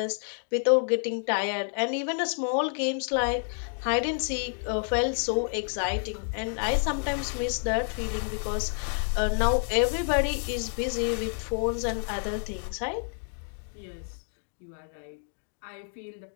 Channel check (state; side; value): silent; right; 59 dB below the other